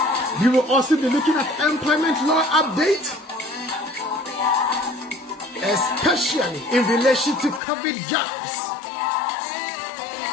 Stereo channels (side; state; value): right; drops out; at 7.6 s